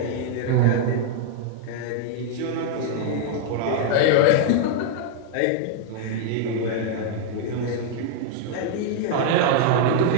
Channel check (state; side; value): different; both; correlation 0.00